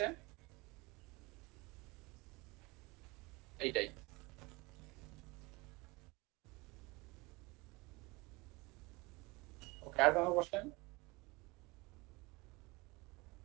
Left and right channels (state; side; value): quieter; left; 24.5 dB